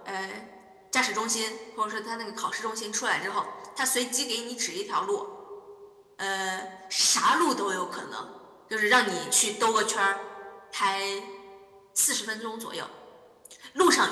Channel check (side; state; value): both; identical; correlation 1.00